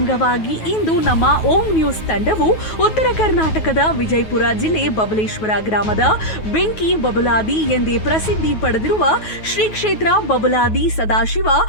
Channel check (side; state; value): right; late; 9.3 ms